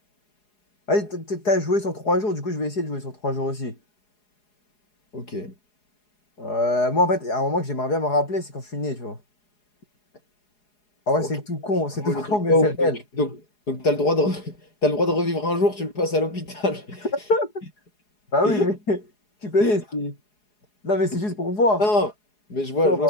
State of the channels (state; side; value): late; right; 4.8 ms